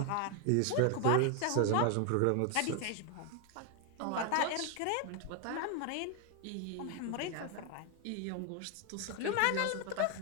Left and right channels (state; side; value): different; both; correlation 0.01